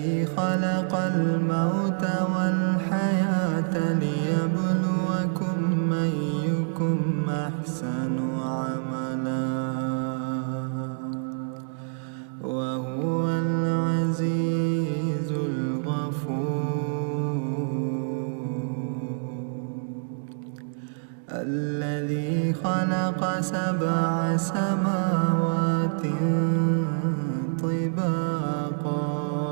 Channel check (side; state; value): left; silent; digital silence